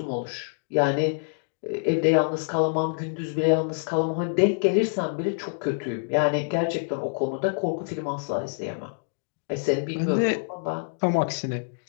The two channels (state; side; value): silent; right; digital silence